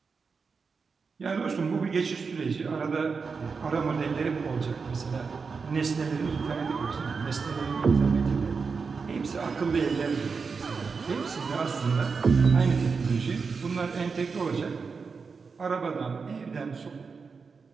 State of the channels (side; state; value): left; quieter; 5.1 dB